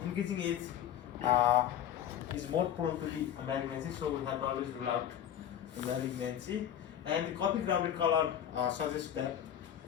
increasing age is more prone to the malignancy, so we have to always rule out the malignancy. And the coffee grounded color suggests that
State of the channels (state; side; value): quieter; right; 10.2 dB